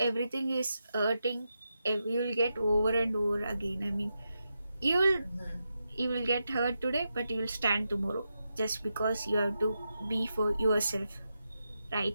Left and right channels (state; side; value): inverted; both; correlation -0.87